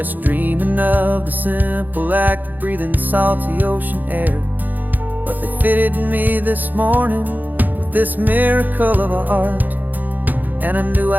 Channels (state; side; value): late; left; 0.085 ms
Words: dreaming of the simple act of breathing salty ocean air. But they fitted me this morning with this miracle of art, and I knew